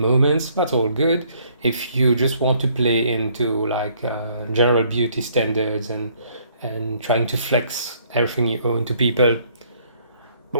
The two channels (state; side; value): inverted; both; correlation -0.64